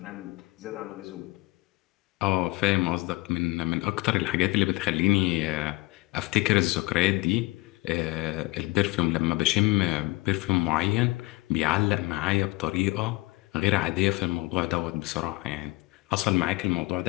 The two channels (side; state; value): right; quieter; 22.1 dB